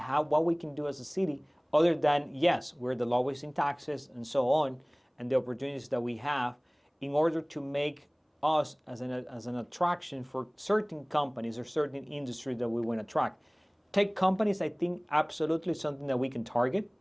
we can do as a city, other than, yes, we're the lowest in taxes and so on, and the opportunities that we have in order to make us as an attraction for certain companies or certain industries that we want to attract. Tech companies, I think, absolutely something that we can target.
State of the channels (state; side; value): identical; both; correlation 1.00